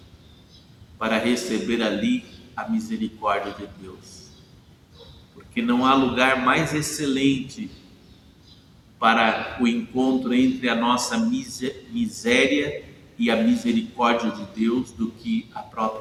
para receber ali a misericórdia de Deus. Porque não há lugar mais excelente para o encontro entre a nossa miséria e a misericórdia de Deus do que a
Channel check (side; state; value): both; identical; correlation 1.00